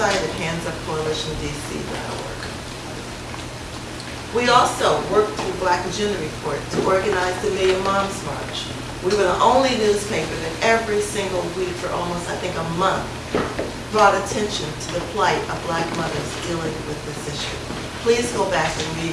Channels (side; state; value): both; identical; correlation 1.00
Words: at handsupcoalitiondc.org. We also worked through Black Agenda Report to organize the Million Moms March. We were the only newspaper that every single week for almost, I think, a month, brought attention to the plight of Black mothers dealing with this issue. Please go back and